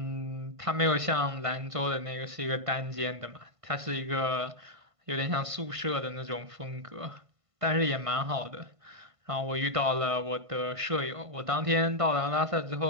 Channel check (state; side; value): late; left; 1.5 ms